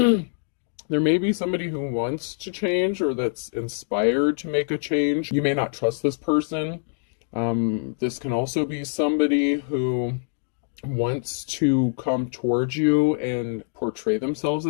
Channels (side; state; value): right; silent; digital silence